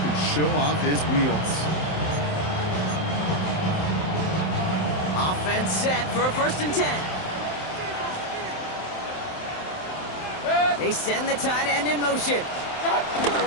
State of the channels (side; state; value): right; late; 27 ms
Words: can show off his wheels. Offense set for a 1st and 10. They send the tight end in motion.